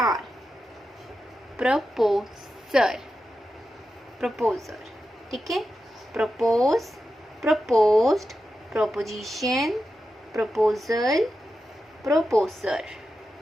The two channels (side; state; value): both; normal; correlation 0.90